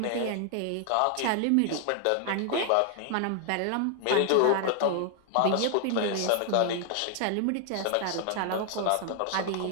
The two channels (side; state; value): both; different; correlation 0.00